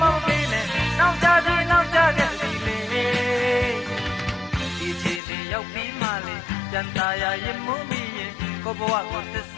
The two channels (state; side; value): drops out; right; at 5.2 s